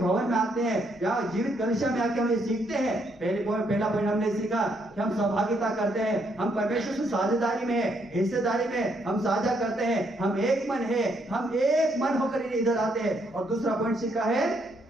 में आते हैं, यहाँ जीवित कलीसिया में आके हम ये सीखते हैं। पहला पॉइंट हमने सीखा कि हम सहभागिता करते हैं, हम परमेश्वर से साझेदारी में, हिस्सेदारी में हम साझा करते हैं, हम एक मन है, हम एक मन होकर इधर आते हैं। और दूसरा पॉइंट सीखा है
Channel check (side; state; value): both; normal; correlation 0.73